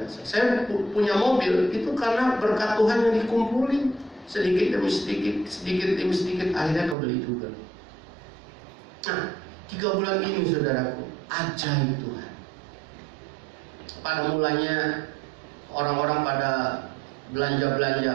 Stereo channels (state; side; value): drops out; left; at 7.0 s